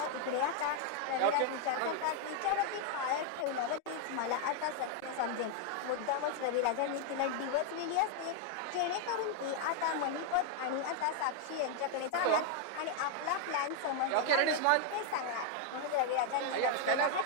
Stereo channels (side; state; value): both; different; correlation 0.00